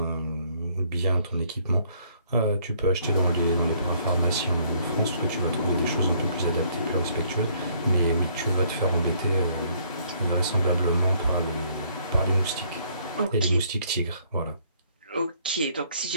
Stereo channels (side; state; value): both; inverted; correlation -0.64